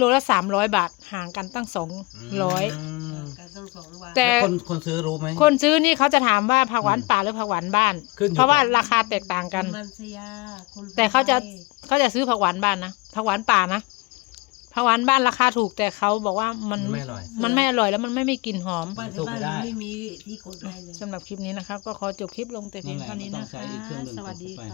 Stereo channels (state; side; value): quieter; right; 25.7 dB